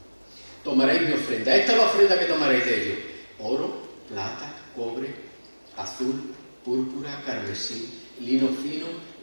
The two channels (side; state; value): both; inverted; correlation -1.00